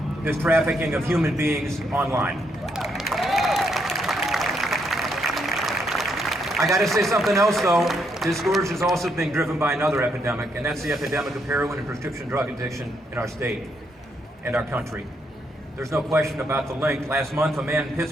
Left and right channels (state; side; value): normal; both; correlation 0.75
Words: this trafficking of human beings online. I got to say something else, though. This scourge is also being driven by another epidemic, and that's the epidemic of heroin and prescription drug addiction in our state and our country. There's no question about the link. Last month, a man in